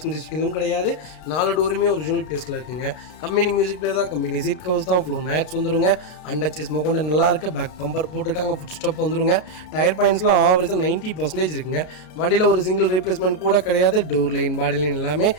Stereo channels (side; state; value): right; late; 32 ms